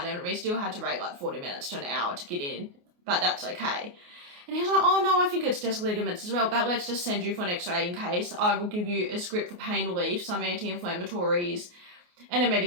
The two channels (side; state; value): left; late; 28 ms